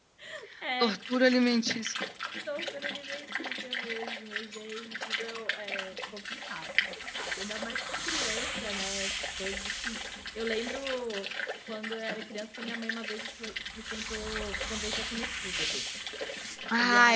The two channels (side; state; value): both; identical; correlation 1.00